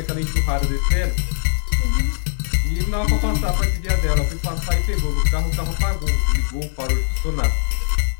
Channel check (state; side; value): silent; right; 65 dB below the other